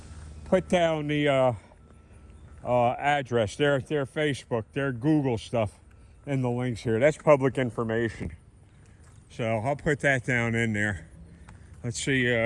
put down the address, their Facebook, their Google stuff in the links here. That's public information. So I'll put that down in there. Let's see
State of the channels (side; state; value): both; identical; correlation 1.00